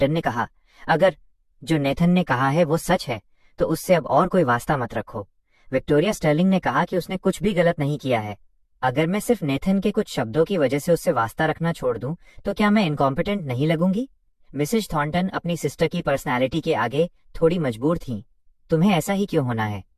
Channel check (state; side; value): identical; both; correlation 1.00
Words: ने कहा, अगर जो नेथन ने कहा है वो सच है तो उससे अब और कोई वास्ता मत रखो। विक्टोरिया स्टर्लिंग ने कहा कि उसने कुछ भी गलत नहीं किया है। अगर मैं सिर्फ नेथन के कुछ शब्दों की वजह से उससे वास्ता रखना छोड़ दूं तो क्या मैं इनकॉम्पिटेंट नहीं लगूंगी? मिसेस थॉर्नटन अपनी सिस्टर की पर्सनैलिटी के आगे थोड़ी मजबूर थीं। तुम्हें ऐसा ही क्यों होना है?